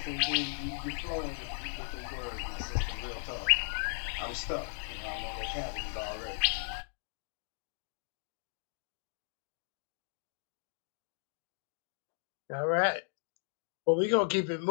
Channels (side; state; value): right; silent; digital silence